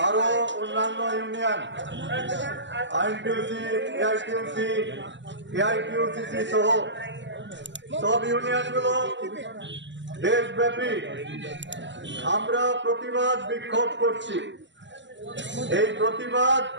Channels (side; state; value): left; late; 0.53 ms